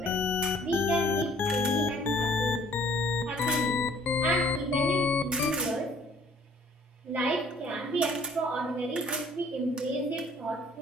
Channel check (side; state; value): both; normal; correlation 0.57